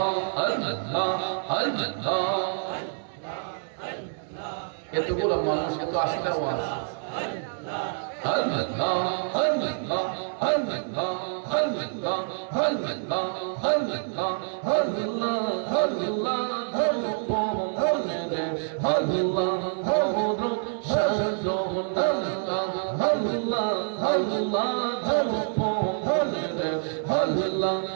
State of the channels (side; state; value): left; silent; digital silence